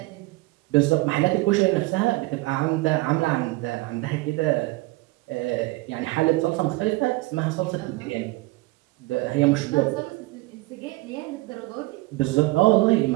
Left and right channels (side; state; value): left; quieter; 21.5 dB